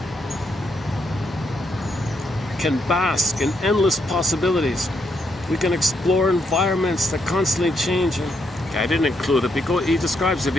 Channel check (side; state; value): both; normal; correlation 0.77